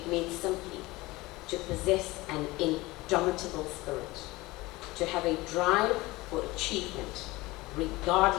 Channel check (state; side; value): quieter; right; 20.7 dB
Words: means simply to possess an indomitable spirit, to have a drive for achievement,